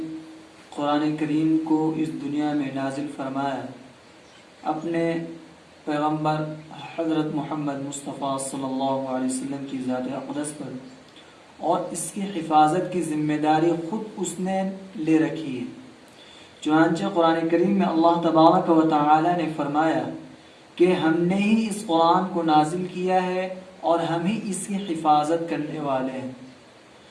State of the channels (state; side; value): identical; both; correlation 1.00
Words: قرآن کریم کو اس دنیا میں نازل فرمایا اپنے پیغمبر حضرت محمد مصطفیٰ صلی اللہ علیہ وسلم کی ذات اقدس پر، اور اس کی حفاظت کی ذمہ داری خود اس نے لے رکھی ہے. چنانچہ قرآن کریم میں اللہ تبارک و تعالی نے فرمایا کہ ہم نے ہی اس قرآن کو نازل کیا ہے اور ہم ہی اس کی حفاظت کرنے والے ہیں.